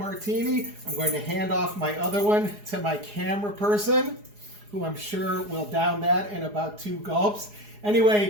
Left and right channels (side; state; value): left; late; 4.8 ms